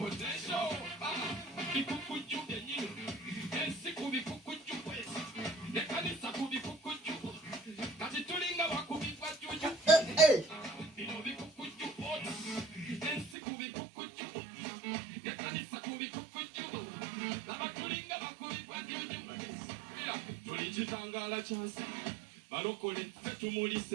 bikukujju byennyini ensi ku bikukujju kwesi ne kanisa ku bikukujju kati tulinga bakubibwa jjuju bino bikukujju oti ensi ku bikukujju ne kanisa ku bikukujju laba tulinga bakubibwa jjuju tuli kitangala kyansi balokole ffe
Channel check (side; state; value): left; drops out; at 13.4 s